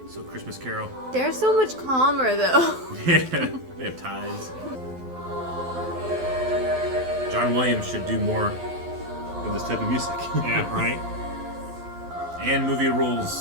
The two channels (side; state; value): left; late; 12 ms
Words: So Christmas Carol. They're so much calmer though. Yeah, they have ties. John Williams should do more of this type of music. Yeah, right. And movie